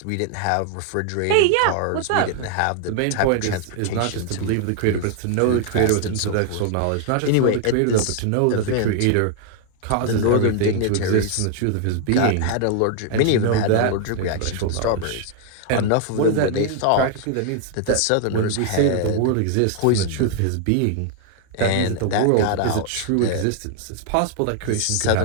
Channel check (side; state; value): both; different; correlation 0.00